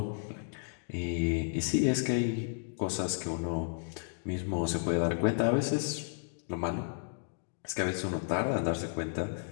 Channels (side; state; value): right; silent; digital silence